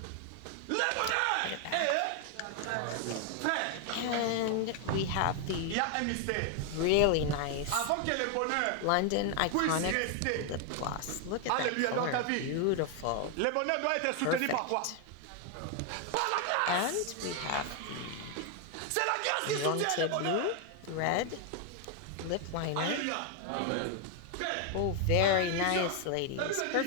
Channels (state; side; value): different; both; correlation 0.00